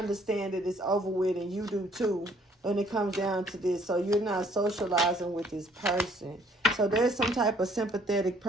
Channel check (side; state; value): both; normal; correlation 0.62